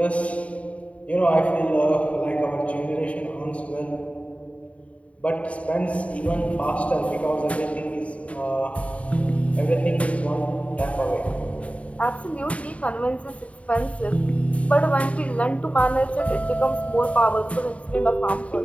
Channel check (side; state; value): right; late; 0.065 ms